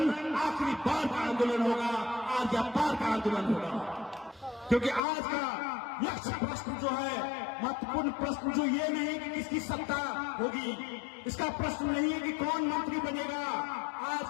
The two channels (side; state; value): right; drops out; at 5.0 s